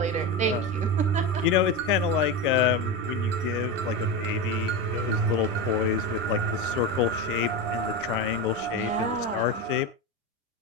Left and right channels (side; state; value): both; normal; correlation 0.19